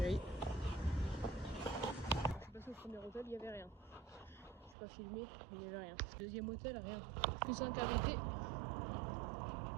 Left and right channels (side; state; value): left; drops out; at 4.8 s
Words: Je suis passée au premier hôtel, il n'y avait rien. Je n'ai pas filmé, il n'y avait rien. Deuxième hôtel, rien. Que 5 invités.